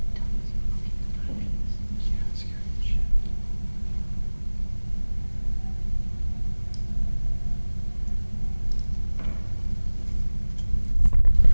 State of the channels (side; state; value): both; inverted; correlation -1.00